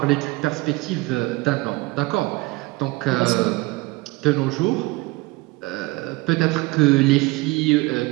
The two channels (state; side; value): quieter; left; 22.7 dB